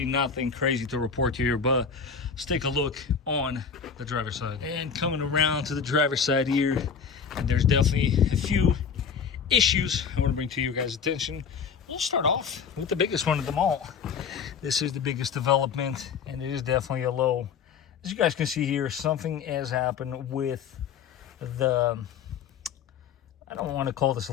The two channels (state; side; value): quieter; right; 6.5 dB